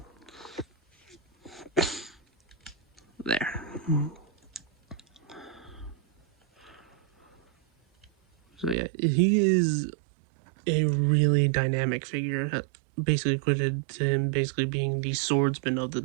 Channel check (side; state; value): left; drops out; at 8.8 s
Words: There. So yeah, he is a really dynamic figure, basically equated to him basically being the swordsman of the